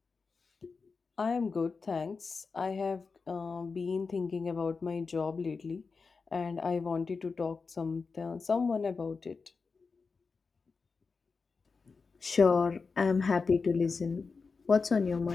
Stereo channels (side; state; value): right; quieter; 4.7 dB